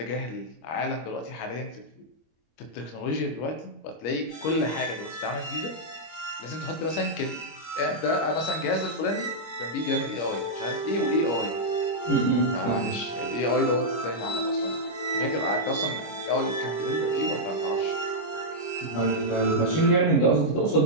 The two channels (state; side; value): late; right; 25 ms